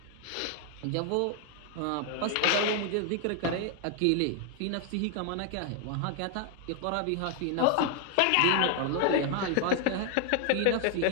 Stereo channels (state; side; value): different; both; correlation 0.00